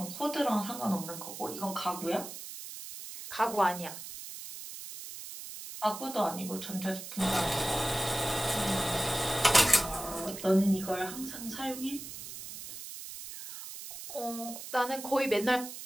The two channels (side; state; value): right; noise; hiss, 11 dB below the sound